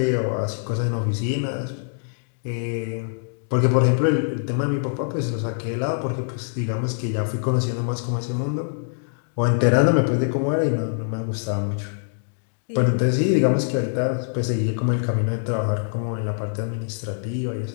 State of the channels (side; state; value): right; silent; digital silence